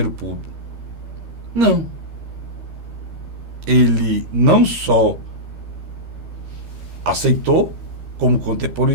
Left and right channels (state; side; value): late; left; 13 ms